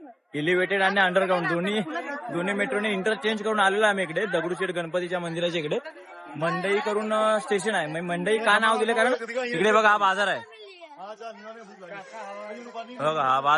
एलिव्हेटेड आणि अंडरग्राऊंड दोन्ही मेट्रोने इंटरचेंज करून आलेलो आम्ही इकडे दगडूशेठ गणपतीच्या मंदिराच्या इकडे. मंडई करून स्टेशन आहे. मंडई का नाव दिले कारण इकडे बघा हा बाजार आहे, बघा हा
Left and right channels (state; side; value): identical; both; correlation 1.00